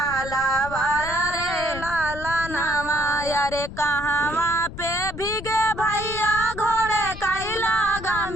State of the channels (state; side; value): noise; left; rumble, 11 dB below the sound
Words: रे लाला नवा। रे कहवा पे भीगे भैया घोड़े कैला